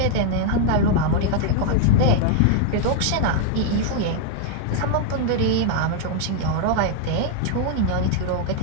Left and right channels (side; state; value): both; different; correlation 0.00